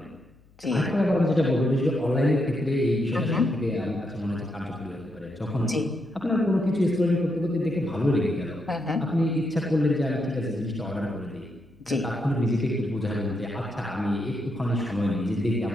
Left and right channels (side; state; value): left; noise; hum, 29 dB below the sound